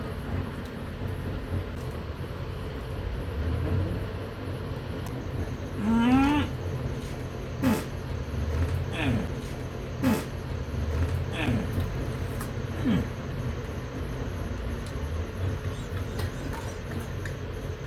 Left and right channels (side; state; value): both; identical; correlation 1.00